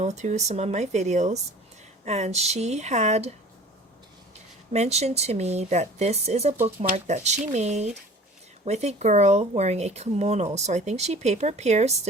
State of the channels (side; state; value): both; normal; correlation 0.44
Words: through some of my videos, and she had mentioned to me that this is a bookmark that she made with a girl wearing a kimono. So I think she paper pierced